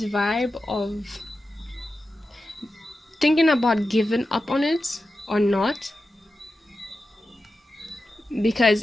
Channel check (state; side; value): normal; both; correlation 0.91